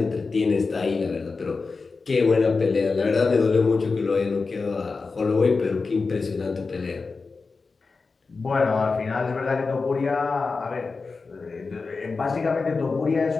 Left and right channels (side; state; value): right; quieter; 4.3 dB